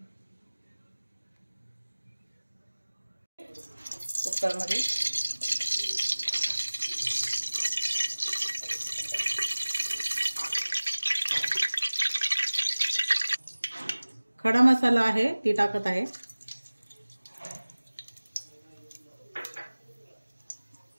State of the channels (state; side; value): inverted; both; correlation -1.00